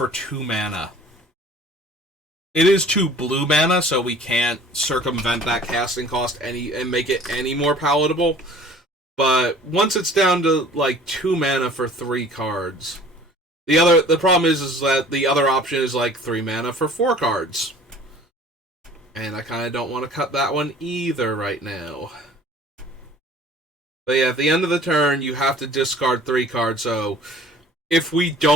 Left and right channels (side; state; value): both; normal; correlation 0.49